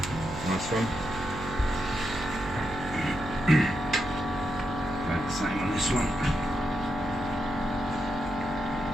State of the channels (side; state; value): right; noise; hum, 10 dB below the sound